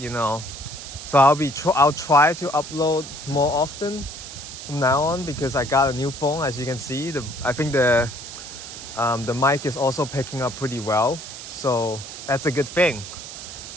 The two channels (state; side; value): noise; right; hiss, 11 dB below the sound